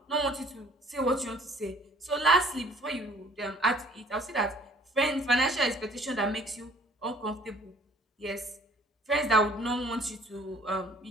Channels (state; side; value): normal; both; correlation 0.55